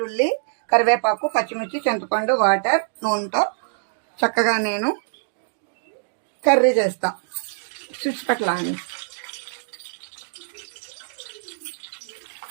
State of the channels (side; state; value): left; silent; digital silence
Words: కరివేపాకు, పచ్చిమిర్చి, చింతపండు, వాటర్, నూనెతో చక్కగా నేను కర్రీ చేస్తా. చుట్టుపక్కల అని